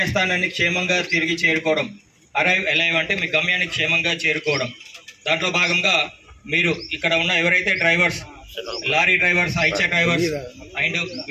క్షేమంగా తిరిగి చేరుకోవడం. అరైవ్ అలైవ్ అంటే మీ గమ్యాన్ని క్షేమంగా చేరుకోవడం. దాంట్లో భాగంగా మీరు ఇక్కడ ఉన్న ఎవరైతే drivers, lorry drivers, Eicher drivers and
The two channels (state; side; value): identical; both; correlation 1.00